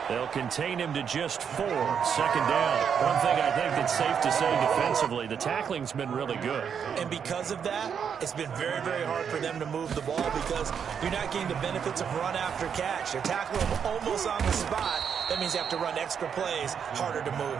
They'll contain him to just 4. Second down. One thing I think that's safe to say defensively, the tackling's been really good. And because of that, it's been very, very hard for them to move the ball because you're not getting the benefits of run after catch. They're tackling him almost on the spot. That means you have to run extra plays, harder to move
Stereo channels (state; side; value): quieter; left; 7.4 dB